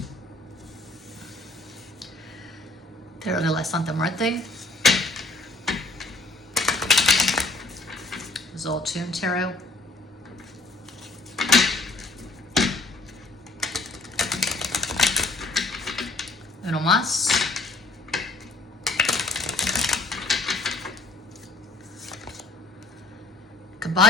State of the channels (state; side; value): quieter; right; 3.1 dB